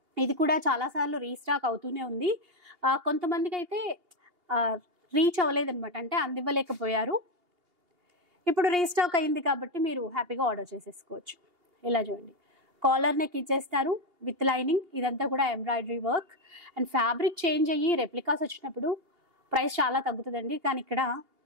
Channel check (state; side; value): late; left; 2.8 ms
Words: ఇది కూడా చాలాసార్లు రీస్టాక్ అవుతూనే ఉంది. కొంతమందికి అయితే రీచ్ అవ్వలేదన్నమాట, అంటే అందివ్వలేకపోయారు. ఇప్పుడు రీస్టాక్ అయింది కాబట్టి మీరు హ్యాపీగా ఆర్డర్ చేసేసుకోవచ్చు. ఇలా చూడండి, కాలర్ నెక్ ఇచ్చేస్తారు విత్ లైనింగ్. ఇదంతా కూడా embroidery work. And fabric change అయ్యి రెప్లికాస్ వచ్చినప్పుడు ప్రైస్ చాలా తగ్గుతుందండి. కానీ ఇక్కడ